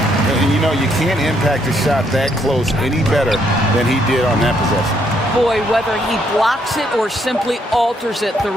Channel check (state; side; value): normal; both; correlation 0.72